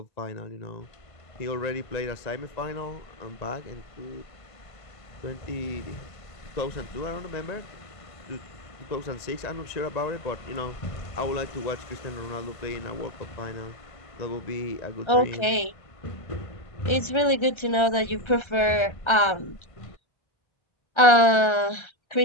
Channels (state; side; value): late; right; 1.3 ms